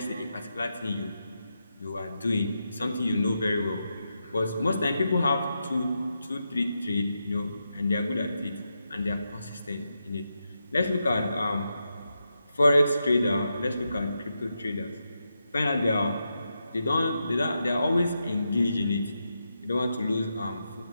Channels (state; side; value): inverted; both; correlation -0.86